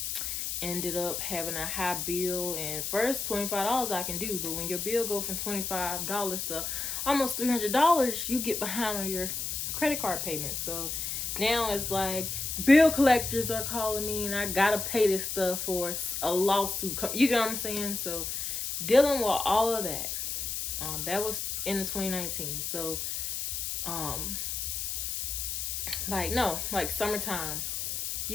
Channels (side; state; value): left; noise; hiss, 3 dB below the sound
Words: ended up having a high bill. And first $25 I can do, but when your bill go from $25 to almost $300, you get behind on your credit card payments. So now it's like the bill collectors are calling me, and I gotta pay this stuff for a lawsuit. You get what I'm saying? So dealing with all of that, that was in the 2019. So like summertime,